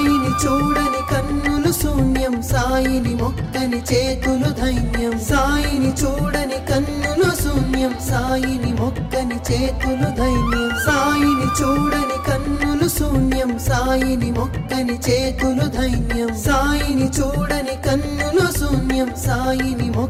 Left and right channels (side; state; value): both; identical; correlation 1.00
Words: చూడని కన్నులు శూన్యం సాయిని మొక్కని చేతులు ధైన్యం సాయిని చూడని కన్నులు శూన్యం సాయిని మొక్కని చేతులు ధైన్యం సాయిని చూడని కన్నులు శూన్యం సాయిని మొక్కని చేతులు ధైన్యం సాయిని చూడని కన్నులు శూన్యం సాయిని